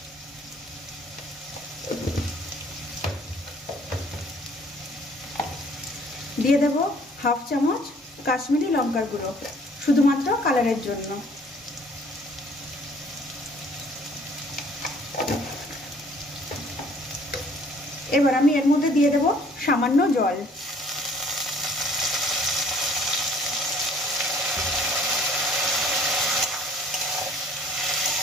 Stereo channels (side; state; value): both; normal; correlation 0.57